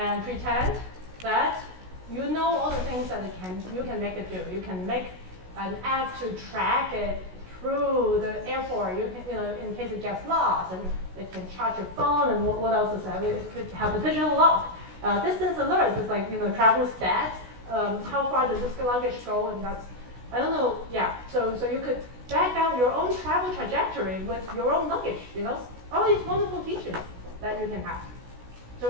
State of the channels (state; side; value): late; left; 16 ms